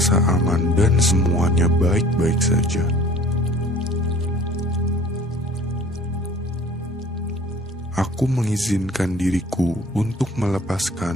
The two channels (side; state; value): both; normal; correlation 0.50